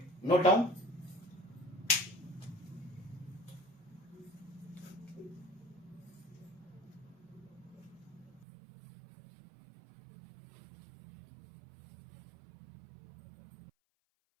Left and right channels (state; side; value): drops out; left; at 8.5 s